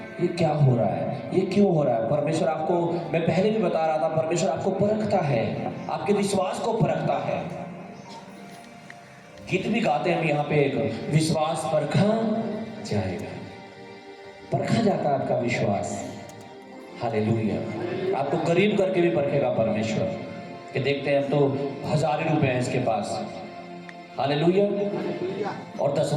ये क्या हो रहा है, ये क्यों हो रहा है। परमेश्वर आपको, मैं पहले भी बता रहा था, परमेश्वर आपको परखता है, आपके विश्वास को परखता है। गीत भी गाते हैं हम यहाँ पे, एक विश्वास परखा जाएगा। परखा जाता है आपका विश्वास। हालेलुया। आपको करीब करके भी परखेगा परमेश्वर, कि देखते हैं तो 1000 ही रुपए हैं इसके पास। हालेलुया। और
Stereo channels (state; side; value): identical; both; correlation 1.00